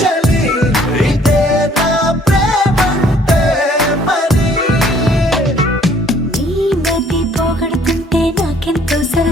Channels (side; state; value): both; normal; correlation 0.59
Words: చలి, ఇదే నా ప్రేమంటే మరి. నీ మతి పోగొడుతుంటే నాకెంతో